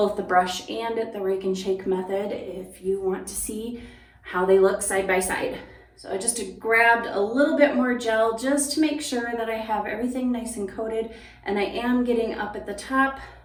the brush and the rake and shake method if you want to see how they look side by side. So I just grabbed a little bit more gel just to make sure that I have everything nice and coated, and I am getting up at the top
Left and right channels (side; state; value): both; identical; correlation 1.00